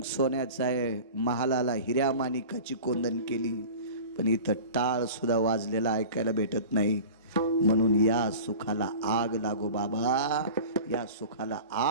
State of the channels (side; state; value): both; inverted; correlation -0.37